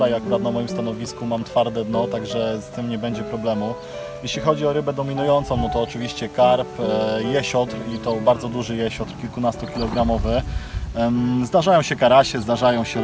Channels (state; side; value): identical; both; correlation 1.00